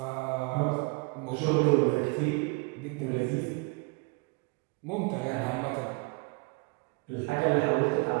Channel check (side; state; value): left; quieter; 28.9 dB